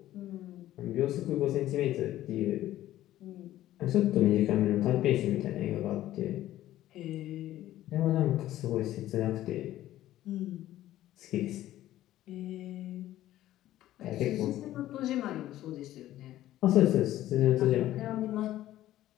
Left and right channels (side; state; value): right; quieter; 14.0 dB